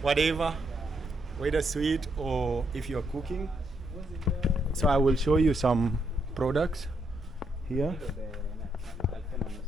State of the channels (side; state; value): both; normal; correlation 0.78